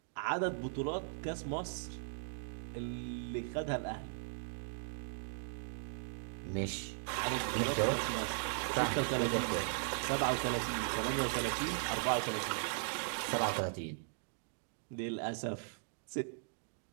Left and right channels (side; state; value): left; silent; digital silence